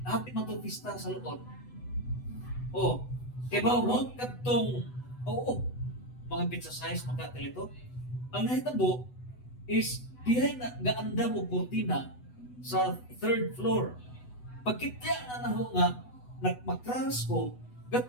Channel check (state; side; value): late; right; 8.1 ms